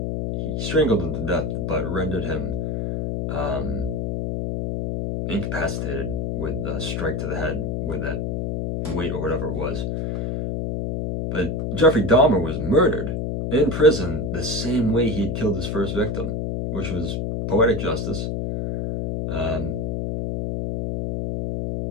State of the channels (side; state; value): left; noise; hum, 1 dB below the sound